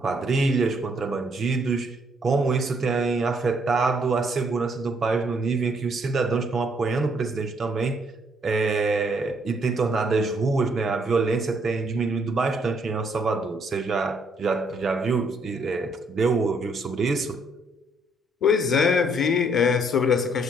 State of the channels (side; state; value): both; normal; correlation 0.69